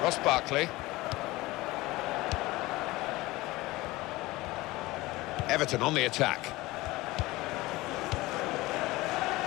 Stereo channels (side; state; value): right; quieter; 19.9 dB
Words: Ross Barkley. Everton on the attack.